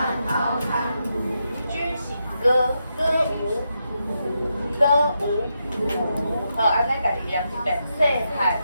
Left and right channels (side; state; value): both; inverted; correlation -0.84